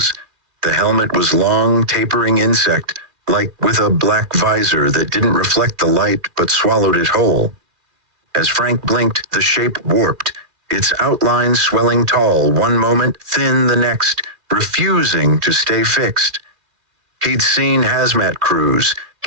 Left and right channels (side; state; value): left; late; 2.3 ms